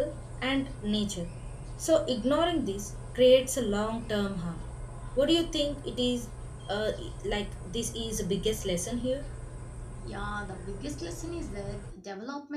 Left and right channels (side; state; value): both; identical; correlation 1.00